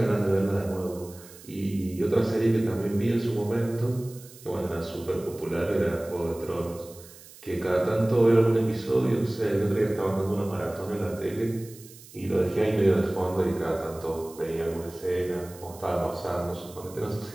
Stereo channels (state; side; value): noise; right; hiss, 20 dB below the sound